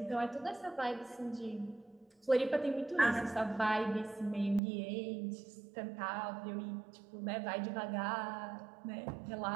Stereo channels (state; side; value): drops out; left; at 4.6 s